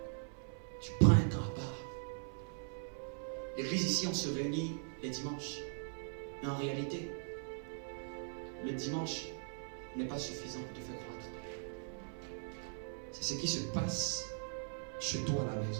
tu prends un temps à part. L'église ici, on se réunit les dimanches. Mais en réalité, le dimanche n'est pas suffisant pour te faire croître. C'est ce qui se passe chez toi à la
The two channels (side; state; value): left; silent; 51 dB below the other